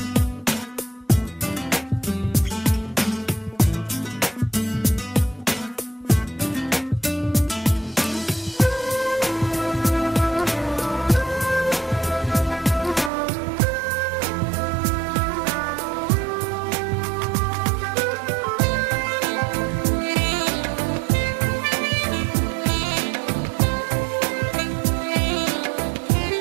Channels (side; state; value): left; drops out; at 13.1 s